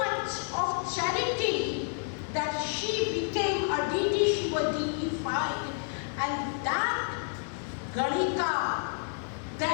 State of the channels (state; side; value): silent; right; 58 dB below the other